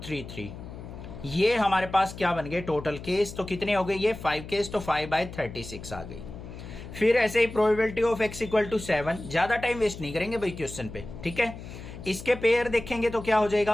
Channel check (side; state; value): left; noise; hum, 12 dB below the sound